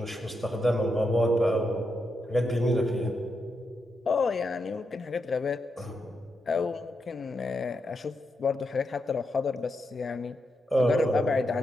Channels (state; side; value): normal; both; correlation 0.84